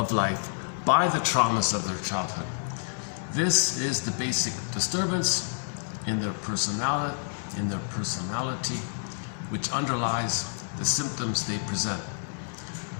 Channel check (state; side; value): silent; right; digital silence